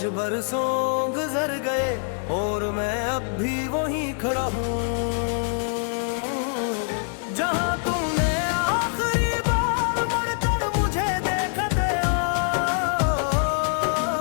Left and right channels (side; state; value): right; silent; 57 dB below the other